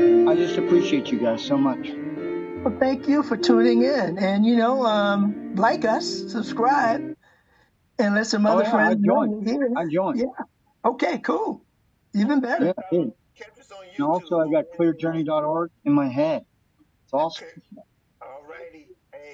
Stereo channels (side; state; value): both; identical; correlation 1.00